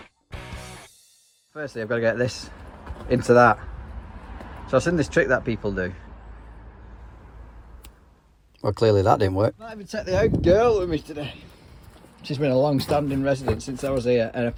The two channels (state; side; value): identical; both; correlation 1.00